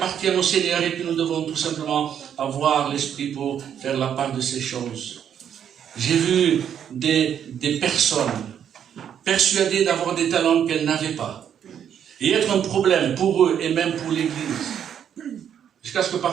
au Seigneur et que nous devons tout simplement avoir l'esprit pour faire la part de ces choses. J'ai vu des personnes persuadées d'avoir des talents qu'elles n'avaient pas. Et être un problème pour eux et même pour l'Église. Jusqu'à ce que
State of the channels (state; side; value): quieter; left; 8.9 dB